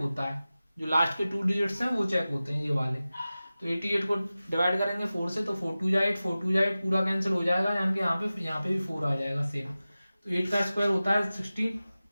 है, जो लास्ट के 2 डिजिट्स हैं वो चेक होते हैं ये वाले। तो 88 को डिवाइड करेंगे 4 से, तो 4 2 जा 8, 4 2 जा 8, पूरा कैंसिल हो जाएगा, यानी कि यहाँ पे भी 4 आ जाएगा सेम। तो 8 का स्क्वायर होता है 16,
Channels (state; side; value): inverted; both; correlation -0.96